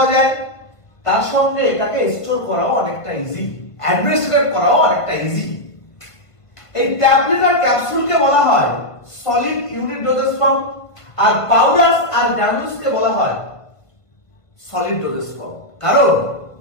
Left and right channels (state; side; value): late; right; 1.5 ms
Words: যায়, তার সঙ্গে এটাকে স্টোর করাও অনেকটা ইজি, অ্যাডমিনিস্ট্রেট করাও অনেকটা ইজি। এই ট্যাবলেট আর ক্যাপসুলকে বলা হয় সলিড ইউনিট ডোজেস ফর্ম, আর পাউডারস আর গ্রানুলসকে বলা হয় সলিড ডোজেস ফর্ম। কারণ